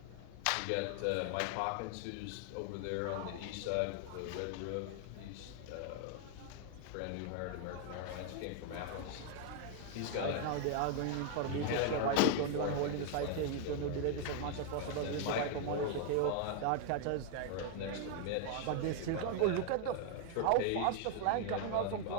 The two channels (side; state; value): both; different; correlation 0.00